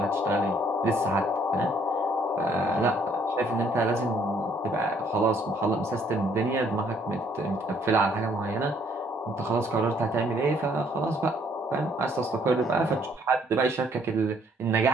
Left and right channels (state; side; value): normal; both; correlation 0.65